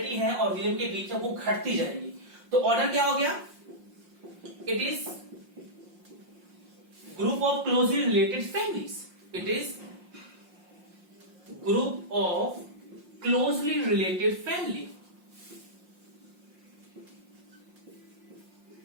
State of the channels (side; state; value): left; late; 5.6 ms